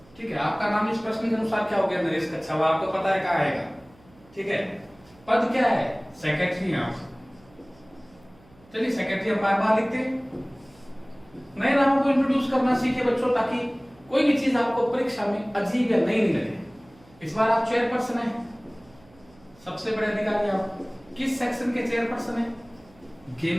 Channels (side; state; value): right; noise; hum, 28 dB below the sound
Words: ठीक है। आपका नाम इस प्रश्न के अनुसार क्या हो गया? नरेश कच्छावा। आपको पता है कहाँ आएगा, ठीक है। पद क्या है? सेक्रेटरी है आप। चलिए सेक्रेटरी हम बार बार लिखते हैं। नए नामों को इंट्रोड्यूस करना सीखे बच्चों, ताकि कोई भी चीज आपको परीक्षा में अजीब या नई नहीं लगे। इस बार आप चेयरपर्सन हैं, सबसे बड़े अधिकारी आप। किस सेक्शन के चेयरपर्सन हैं?